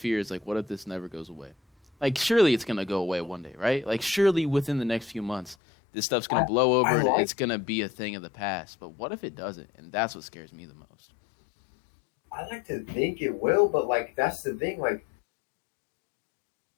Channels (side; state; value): right; drops out; at 5.6 s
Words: fear is like, what if this never goes away? Like, surely it's gonna go away one day, right? Like, surely within the next few months, this stuff's gonna blow over and it's gonna be a thing of the past. But what if it doesn't? And that's what scares me the most. I like to think it will, but like that's the thing. Like